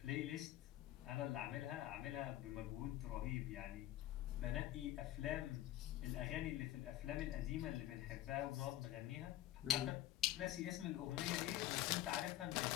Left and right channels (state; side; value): quieter; right; 14.2 dB